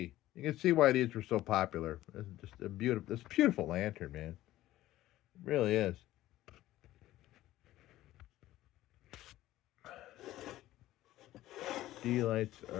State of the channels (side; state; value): right; quieter; 15.2 dB